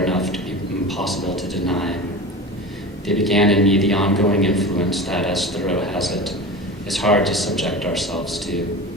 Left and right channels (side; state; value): both; normal; correlation 0.31